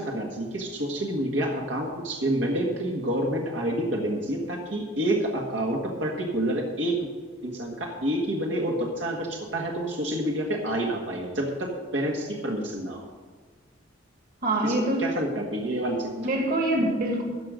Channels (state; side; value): normal; both; correlation 0.43